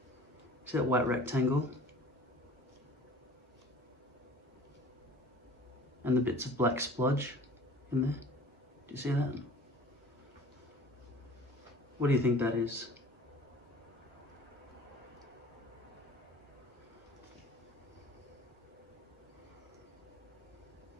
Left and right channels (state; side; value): normal; both; correlation 0.45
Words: See that white rectangle? And the bits of black splodge in there? Do you see that? What do you think that is?